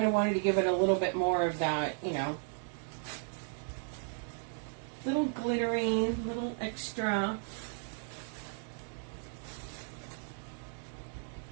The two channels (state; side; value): silent; left; 54 dB below the other